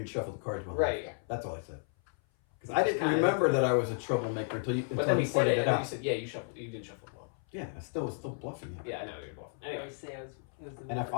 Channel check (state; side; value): silent; right; 56 dB below the other